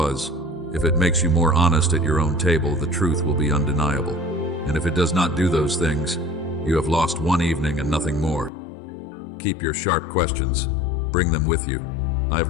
If it makes you more honest at your own table, the truth will be undeniable. And if it does not do those things, you have lost one evening and nothing more. Keep your sharp questions. Bring them with you. I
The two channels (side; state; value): right; drops out; at 8.5 s